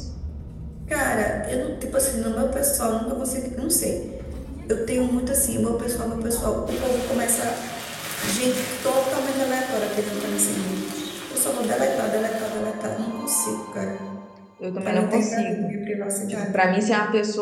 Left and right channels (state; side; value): identical; both; correlation 1.00